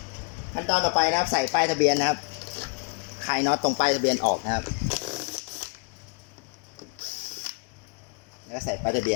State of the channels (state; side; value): quieter; right; 36.4 dB